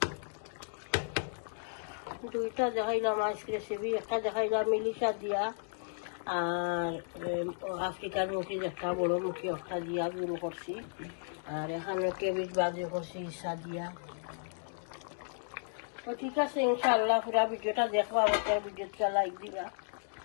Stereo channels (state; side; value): silent; right; digital silence